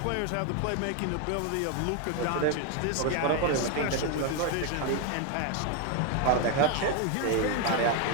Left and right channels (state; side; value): different; both; correlation 0.01